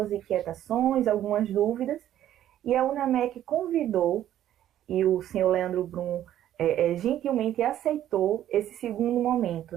inquietações, algumas dúvidas, e a UNAMEC convidou, e o senhor Leandro Brum gentilmente aceitou esse segundo momento,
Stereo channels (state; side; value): quieter; left; 11.9 dB